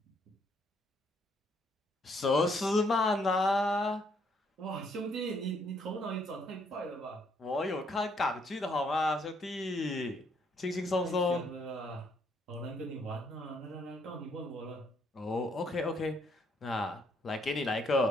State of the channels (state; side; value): normal; both; correlation 0.70